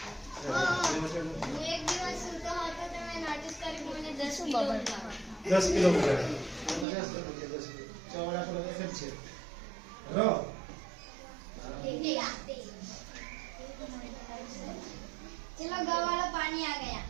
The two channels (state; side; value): drops out; left; at 6.9 s